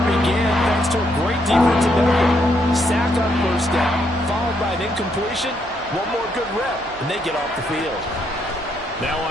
began, thanks to a great defensive effort. Sack on first down, followed by an incompletion. One more good rep, and they get off the field. Now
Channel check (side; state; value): both; normal; correlation 0.75